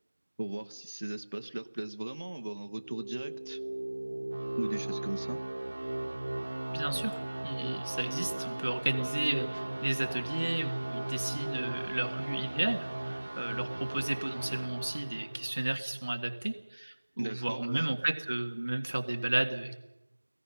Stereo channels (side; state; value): both; inverted; correlation -1.00